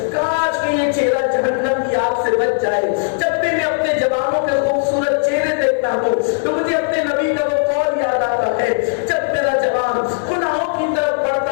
کاش کہ یہ چہرہ جہنم کی آگ سے بچ جائے۔ جب بھی میں اپنے جوانوں کے خوبصورت چہرے دیکھتا ہوں تو مجھے اپنے نبی کا وہ قول یاد آتا ہے، جب میرا جوان گناہوں کی طرف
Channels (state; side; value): silent; right; digital silence